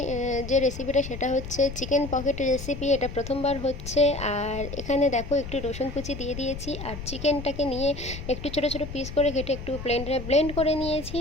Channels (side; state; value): left; noise; rumble, 9 dB below the sound